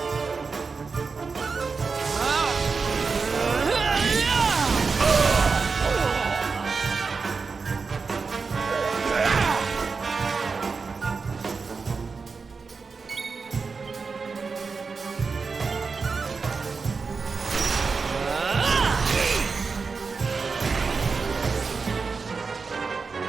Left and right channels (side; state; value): left; quieter; 4.8 dB